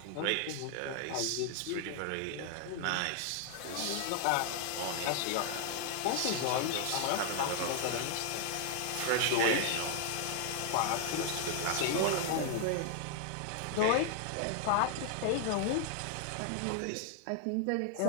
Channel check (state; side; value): different; both; correlation 0.00